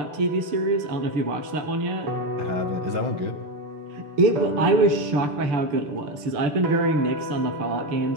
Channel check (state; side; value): late; left; 6.8 ms